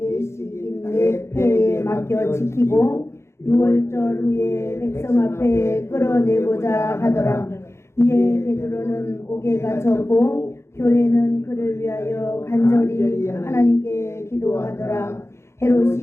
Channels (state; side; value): late; right; 0.13 ms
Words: 네 패에 맡겨 지키고 6월절 후에 백성 앞에 끌어내고자 하더라. 이에 베드로는 옥에 갇혔고 교회는 그를 위하여 간절히 하나님께 기도하더라.